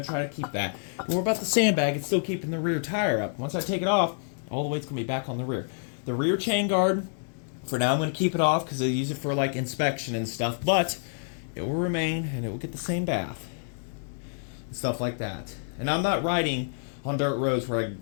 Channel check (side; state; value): right; silent; digital silence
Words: try to keep that. But what about the sandbag? It's still keeping the rear tire up. Once I take it off, all the weight's going to be back on the rear. The rear chain guard, for now I'm going to keep it off because I use it for like inspection and stuff, but it will remain and it will get the same bath and stuff like that. And I'm not riding on dirt roads where I